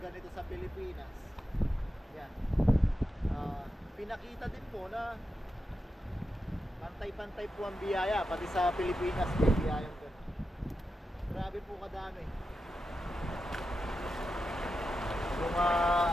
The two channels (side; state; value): both; normal; correlation 0.89